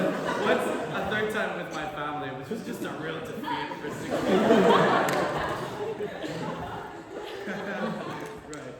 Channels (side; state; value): both; identical; correlation 1.00